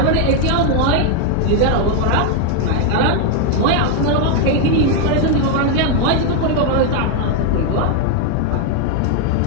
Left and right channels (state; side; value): different; both; correlation 0.01